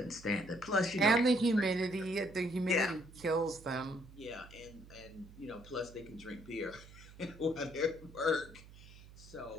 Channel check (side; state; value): right; noise; hum, 19 dB below the sound